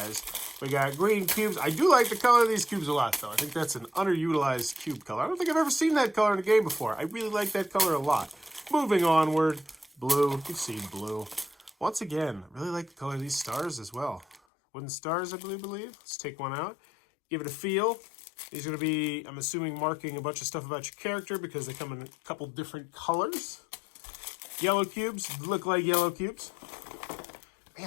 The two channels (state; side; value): drops out; right; at 14.4 s